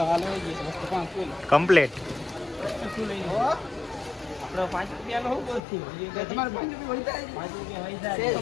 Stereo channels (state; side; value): drops out; right; at 5.6 s